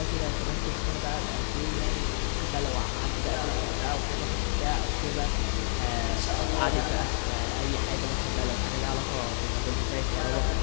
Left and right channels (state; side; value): silent; right; digital silence